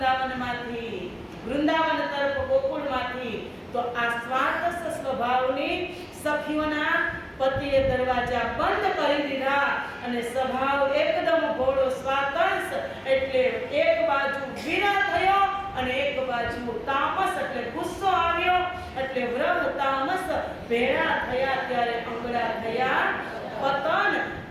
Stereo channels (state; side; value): identical; both; correlation 1.00